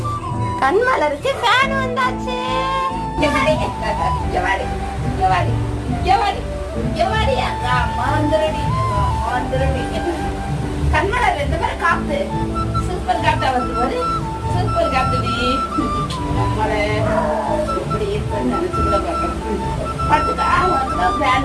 கண்மலருக்கு ஃபேன் வந்தாச்சு. கண்மலர் ரெண்டு பேரும் காத்து சூப்பர் காத்தா வந்து சூப்பர் காத்துடி. நம்மளை இப்படி இருக்குன்னு நினைச்சு கூட பார்க்கணும். பார்த்துக்கா, உனக்கு தான்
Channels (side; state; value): both; identical; correlation 1.00